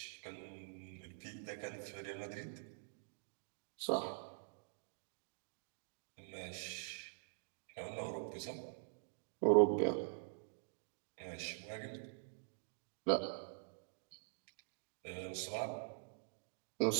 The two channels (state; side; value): silent; left; digital silence